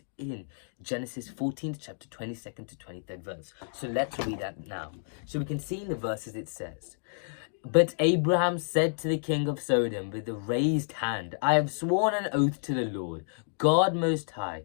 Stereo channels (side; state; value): right; silent; digital silence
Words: in Genesis 14th chapter 22nd to 23rd verse. So let's read that now. So we can see in the verses it says, "But Abraham said to the king of Sodom with a raised hand, I have sworn an oath to the Lord, God Most